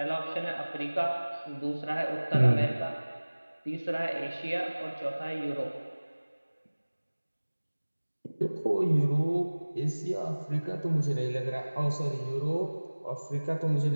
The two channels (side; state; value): both; inverted; correlation -1.00